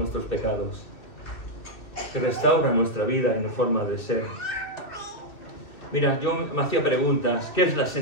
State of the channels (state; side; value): late; right; 2.4 ms